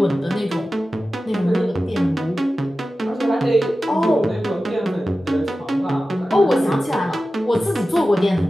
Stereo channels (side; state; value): both; normal; correlation 0.94